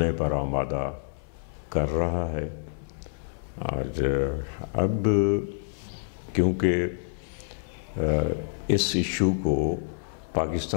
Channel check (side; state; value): right; silent; 56 dB below the other